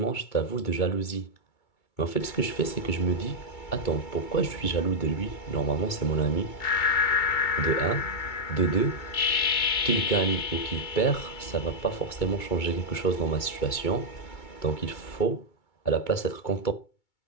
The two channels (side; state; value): right; late; 2.2 ms